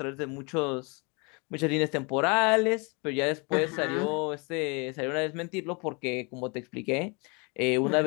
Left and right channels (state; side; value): quieter; right; 31.0 dB